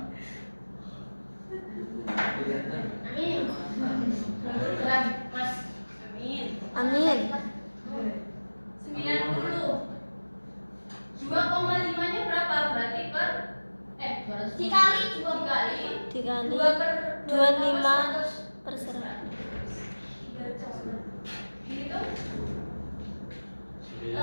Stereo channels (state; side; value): inverted; both; correlation -1.00